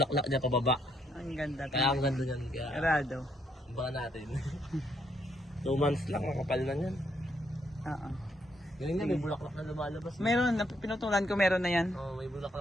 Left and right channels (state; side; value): normal; both; correlation 0.74